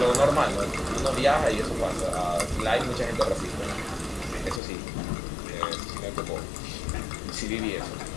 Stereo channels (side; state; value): right; drops out; at 4.6 s